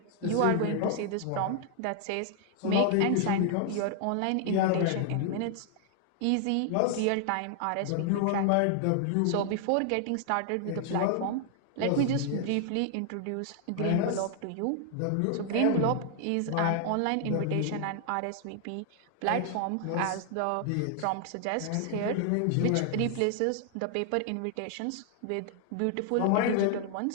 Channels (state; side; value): different; both; correlation 0.00